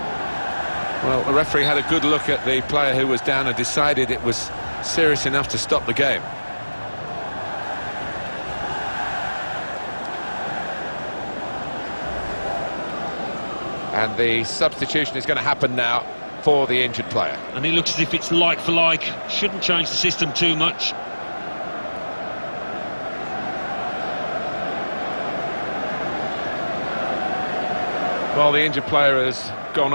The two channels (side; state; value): both; inverted; correlation -1.00